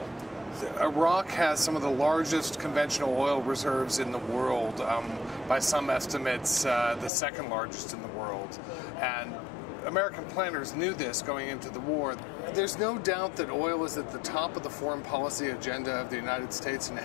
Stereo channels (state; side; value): drops out; right; at 7.1 s